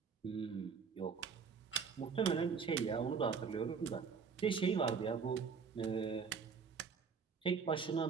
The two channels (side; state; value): left; quieter; 5.9 dB